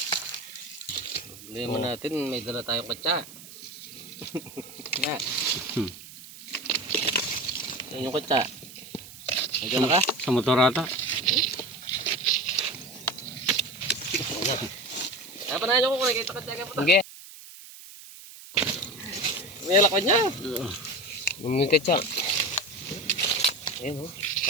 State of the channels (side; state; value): right; noise; hiss, 16 dB below the sound